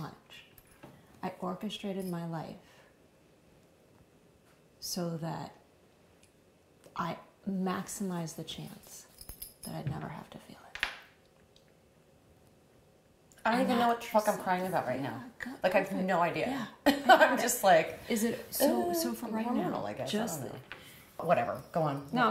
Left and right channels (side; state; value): both; identical; correlation 1.00